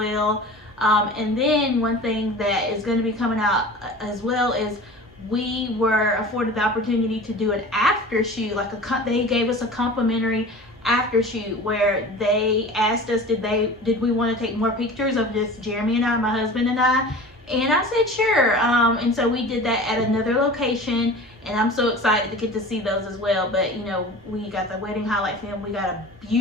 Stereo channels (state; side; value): normal; both; correlation 0.38